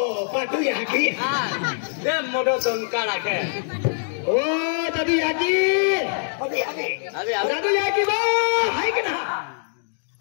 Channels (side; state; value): right; silent; digital silence